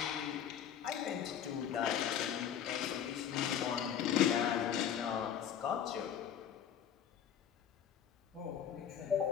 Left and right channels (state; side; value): quieter; right; 8.9 dB